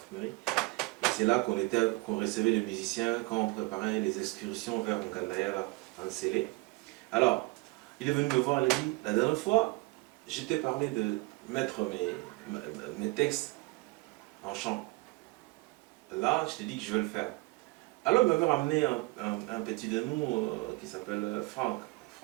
Et c'est là qu'on recevait les musiciens quand on préparait les excursions vers Nkandaya, là, en Célé. Alors, Il est venu me voir, il a dit, la dernière fois, je t'ai parlé de mettre mes textes en chant. Là, je t'ai dit que je vais le faire. Alors, il m'avait ramené un petit de nous qui s'appelle Franck.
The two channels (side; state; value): left; quieter; 24.5 dB